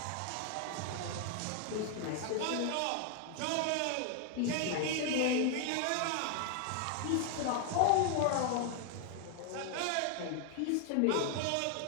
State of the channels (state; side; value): different; both; correlation 0.00